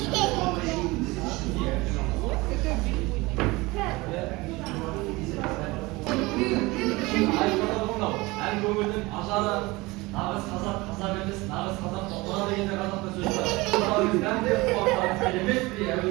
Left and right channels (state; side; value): quieter; left; 22.4 dB